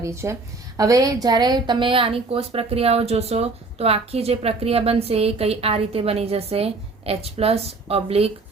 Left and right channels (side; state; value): left; quieter; 3.7 dB